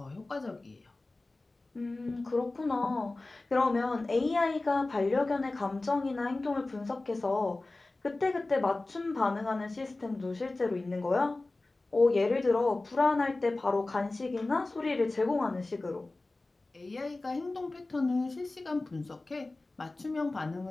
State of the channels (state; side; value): quieter; right; 3.1 dB